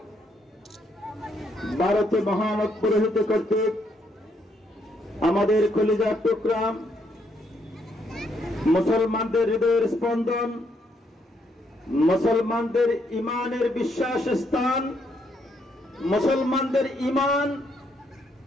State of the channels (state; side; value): normal; both; correlation 0.74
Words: ভারতে মহামত পুরোহিত কর্তৃক আমাদের কলিজার টুকরা মুসলমানদের হৃদয়ের স্পন্দন, মুসলমানদের ইমানের বিশ্বাস স্থান, মুসলমানদের ইমান